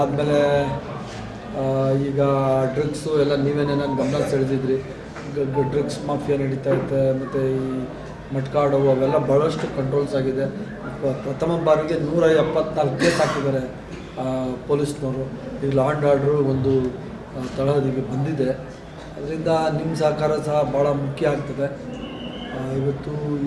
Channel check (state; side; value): identical; both; correlation 1.00